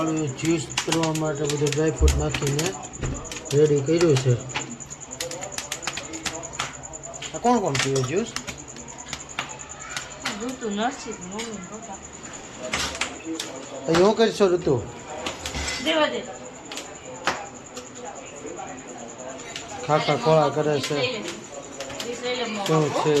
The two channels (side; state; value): both; identical; correlation 1.00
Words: જ્યુસ કરવા માટે બધું ડ્રાયફ્રૂટ નાખીને રેડી કર્યું છે. આ કોણ કોણ પીવે જ્યુસ? હું કરીશો ઋતુ? ખાખા ખોળા કરે છે. શું છે